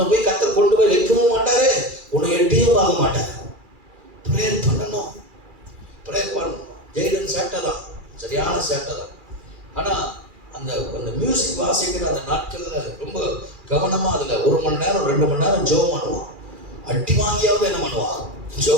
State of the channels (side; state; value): left; late; 2.4 ms